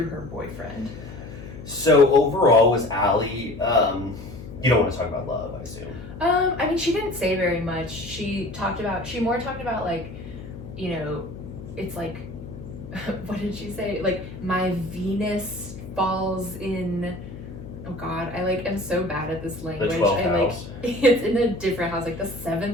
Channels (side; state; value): left; noise; hum, 13 dB below the sound